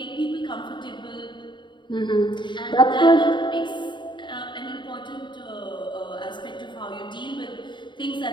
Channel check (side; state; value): right; late; 0.23 ms